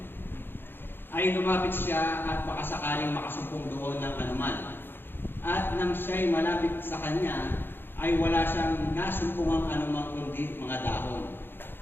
ay lumapit siya at baka sakaling makasumpong doon ng anuman. At nang siya'y malapit sa kanya, ay wala siyang nasumpungang anumang kundi mga dahon,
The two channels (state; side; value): late; right; 0.10 ms